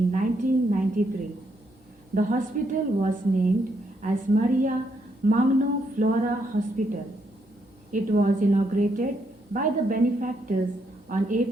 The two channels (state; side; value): normal; both; correlation 0.76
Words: 1993. The hospital was named as Maria Magno Flora Hospital. It was inaugurated by the benefactors on